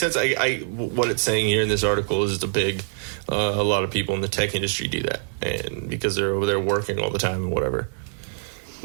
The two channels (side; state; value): left; silent; digital silence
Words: What it's saying here in this article is a lot of people in the tech industry do that, and because they're over there working all the time and whatever.